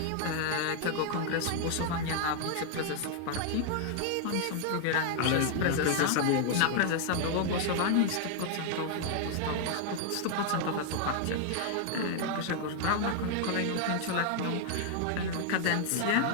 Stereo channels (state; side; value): different; both; correlation 0.00